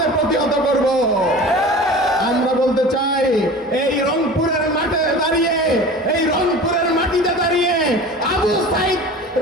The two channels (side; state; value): both; normal; correlation 0.38